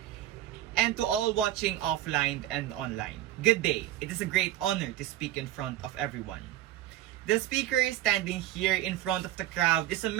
and to all watching offline and online, good day. It is a great honor to speak in front of everyone. The speaker standing here in front of the crowd is a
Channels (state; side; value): quieter; left; 13.6 dB